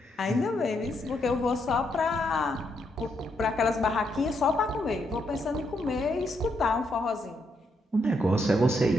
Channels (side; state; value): both; normal; correlation 0.78